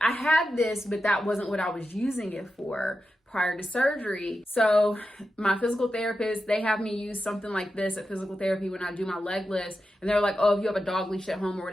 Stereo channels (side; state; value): both; normal; correlation 0.90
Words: had this, but that wasn't what I was using it for prior to surgery. So my physical therapist, they have me use something like this at physical therapy when I do my leg lifts. And they're like, oh, if you have a dog leash at home or